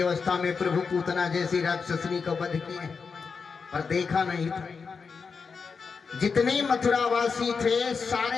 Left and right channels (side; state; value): right; quieter; 5.3 dB